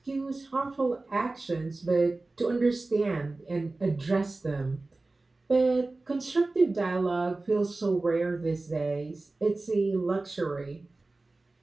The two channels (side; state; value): left; quieter; 3.2 dB